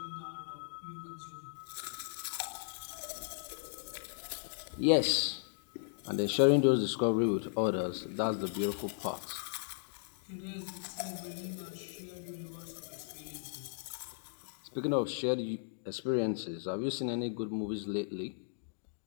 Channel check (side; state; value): right; silent; digital silence